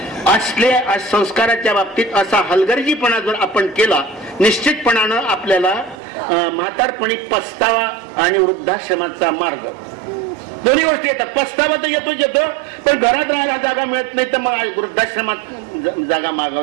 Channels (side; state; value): left; drops out; at 6.0 s